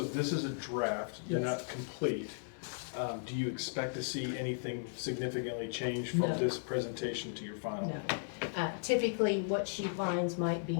this is a draft, they're Yes. not complete. Do you expect to see anything significantly change from No. this presentation to your final? No. Typically, what she finds might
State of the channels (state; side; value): silent; right; 54 dB below the other